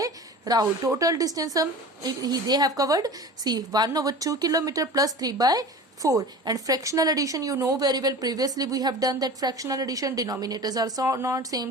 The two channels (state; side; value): normal; both; correlation 0.36